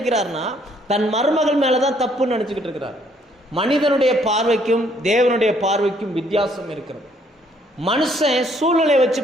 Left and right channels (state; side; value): normal; both; correlation 0.66